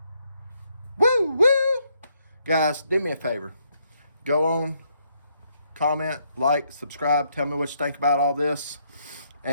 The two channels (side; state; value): both; inverted; correlation -0.74